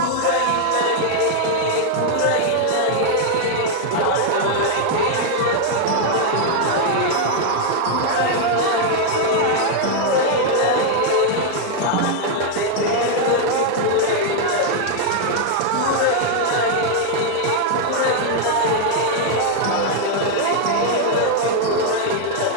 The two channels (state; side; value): different; both; correlation 0.00